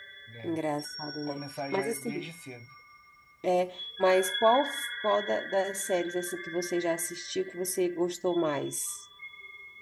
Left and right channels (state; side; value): identical; both; correlation 1.00